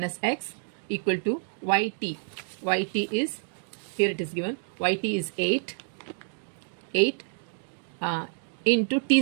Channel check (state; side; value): silent; left; digital silence